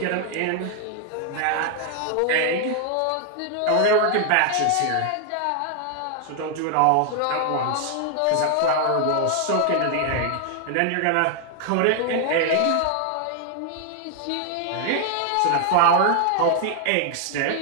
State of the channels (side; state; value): both; different; correlation 0.00